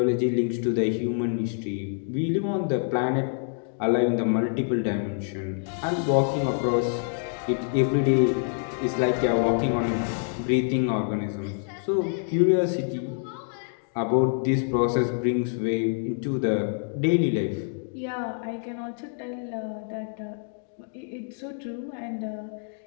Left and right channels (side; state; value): right; silent; digital silence